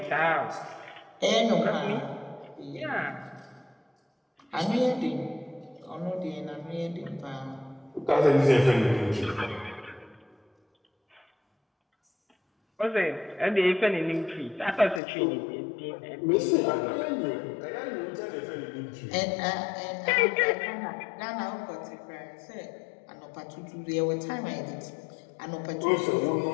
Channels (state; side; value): drops out; right; at 15.0 s